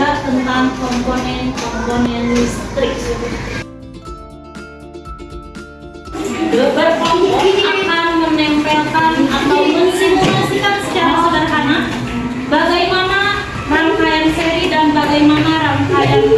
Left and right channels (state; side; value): identical; both; correlation 1.00